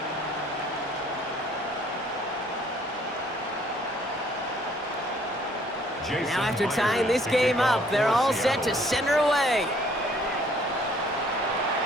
Now after tying this game up, they're all set to send her away.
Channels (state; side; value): normal; both; correlation 0.61